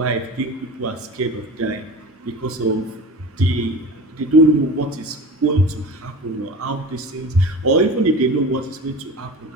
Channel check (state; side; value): normal; both; correlation 0.33